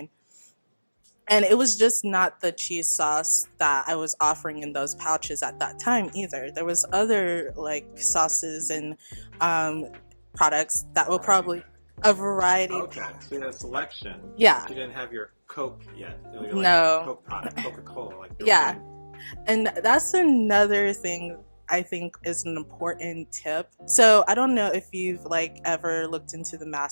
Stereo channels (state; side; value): inverted; both; correlation -1.00